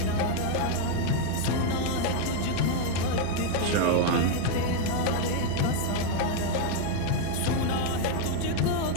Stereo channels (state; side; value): different; both; correlation 0.01